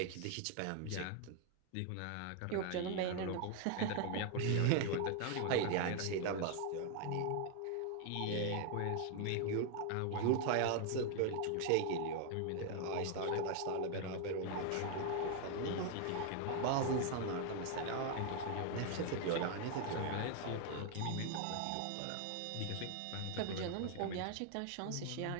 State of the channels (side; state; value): both; different; correlation 0.00